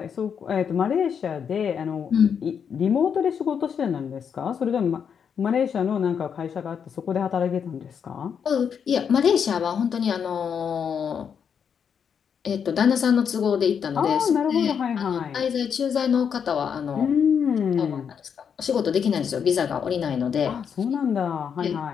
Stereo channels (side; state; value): right; quieter; 7.3 dB